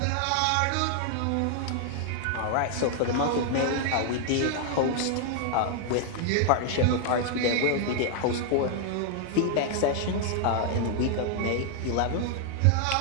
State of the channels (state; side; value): different; both; correlation 0.00